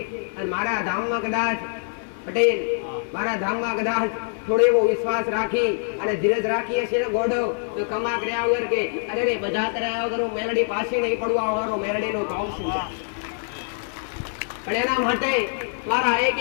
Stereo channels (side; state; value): right; silent; digital silence